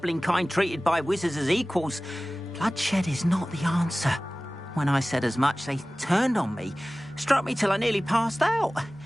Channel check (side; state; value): both; normal; correlation 0.97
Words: kind treated by wizards as equals, bloodshed is not the answer. When I said as much, they turned on me, struck me till I nearly passed out.